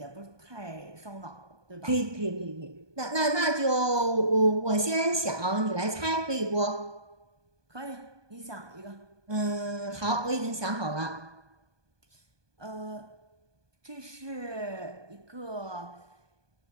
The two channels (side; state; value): left; late; 1.2 ms